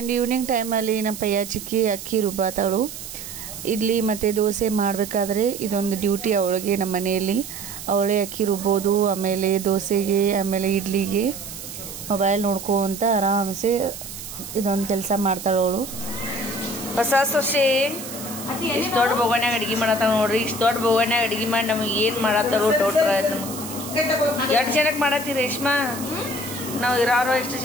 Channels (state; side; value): noise; right; hiss, 11 dB below the sound